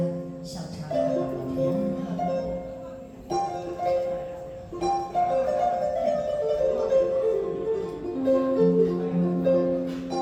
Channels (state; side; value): identical; both; correlation 1.00